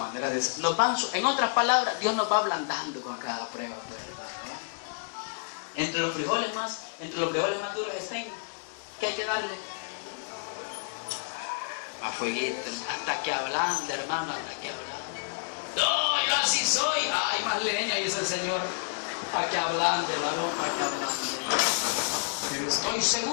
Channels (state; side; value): silent; right; digital silence